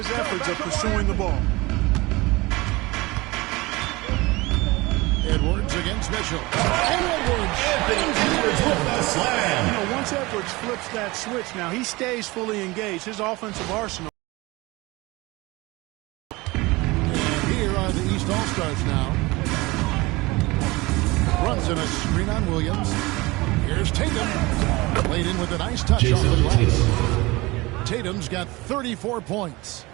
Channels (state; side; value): quieter; left; 22.3 dB